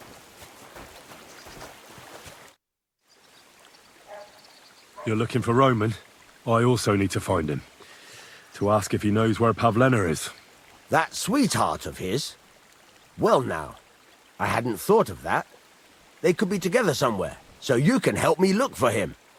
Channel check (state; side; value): identical; both; correlation 1.00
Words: You're looking for Roman? I also need to find him. To ask if he knows where Pavlena is. That sweetheart of his? Well now, I hadn't thought of that. They could be together somewhere, so you can help me look for him.